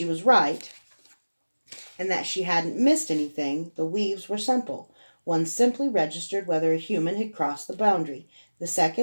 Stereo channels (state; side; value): inverted; both; correlation -1.00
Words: was right and that she hadn't missed anything, the weaves were simple. One simply registered whether a human had crossed the boundary. The